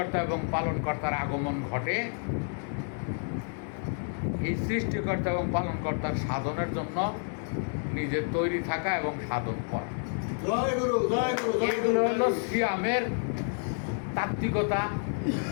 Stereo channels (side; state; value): right; silent; 58 dB below the other